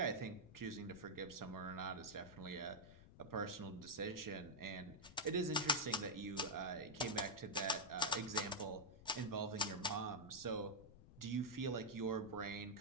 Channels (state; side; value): noise; left; rumble, 18 dB below the sound